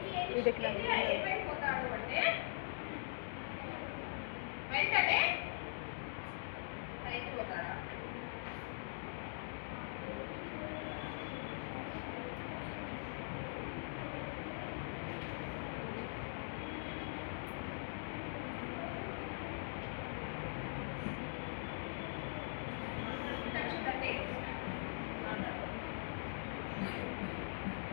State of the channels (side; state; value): right; silent; digital silence